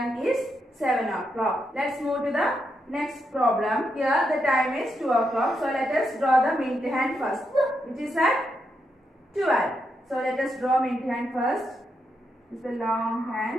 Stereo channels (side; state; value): both; normal; correlation 0.82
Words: is 7 o'clock. Let's move to the next problem. Here the time is 2 o'clock. So let us draw the minute hand first, which is at 12. So let us draw minute hand first. This is the long